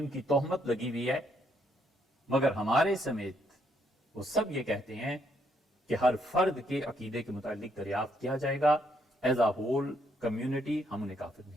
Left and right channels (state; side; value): normal; both; correlation 0.73